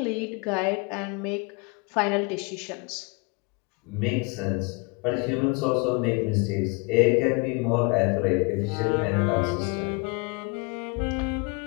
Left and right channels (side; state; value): right; quieter; 30.8 dB